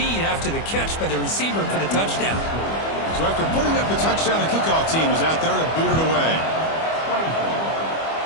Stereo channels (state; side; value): late; right; 25 ms